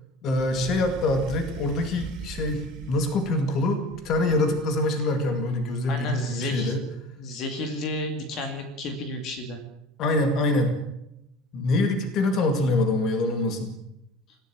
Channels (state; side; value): normal; both; correlation 0.40